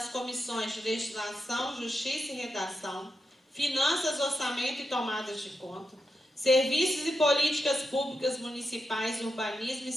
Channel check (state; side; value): normal; both; correlation 0.87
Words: comissões de Legislação, Justiça e Redação, Finanças, Orçamento e Tomadas de Conta, Serviços e Políticas Públicas Municipais, Urbanismo e